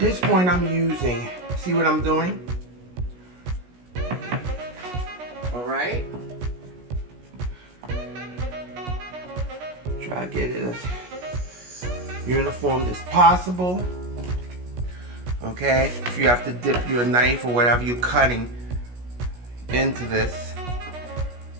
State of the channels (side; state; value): left; late; 17 ms